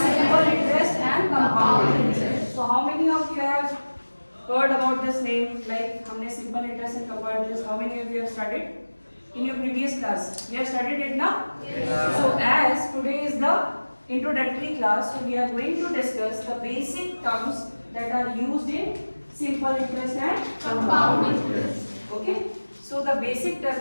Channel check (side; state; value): both; inverted; correlation -1.00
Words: interest and compound interest. So how many of you have heard about this name? Like हमने simple interest and compound interest. How many of you have studied in your previous class? You have studied it now? Yes. So as today is the introductory class, so we are going to discuss the basic terms that are used in simple interest and compound interest. Okay. So the basic